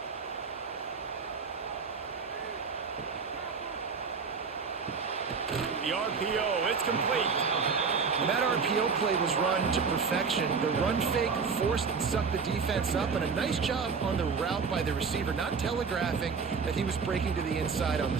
The RPO, it's complete. And that RPO play was run to perfection. The run fake forced and sucked the defense up, and a nice job on the route by the receiver, not telegraphing that he was breaking to the inside on the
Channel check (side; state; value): left; quieter; 5.4 dB